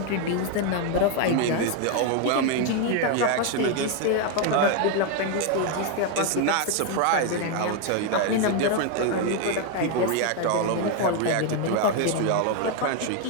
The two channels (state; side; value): different; both; correlation 0.01